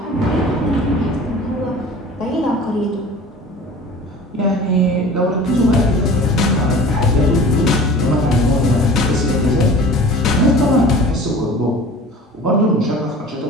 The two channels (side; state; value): both; normal; correlation 0.42